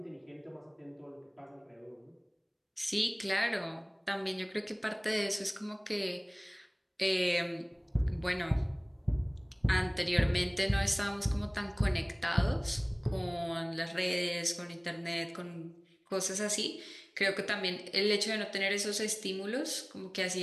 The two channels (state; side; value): identical; both; correlation 1.00